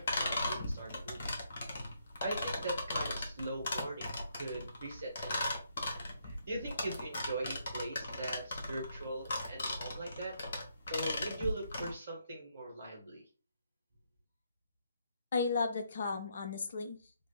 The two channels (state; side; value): inverted; both; correlation -0.75